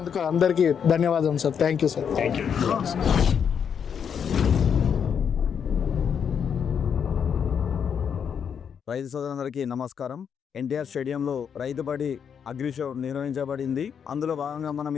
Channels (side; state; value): right; quieter; 7.4 dB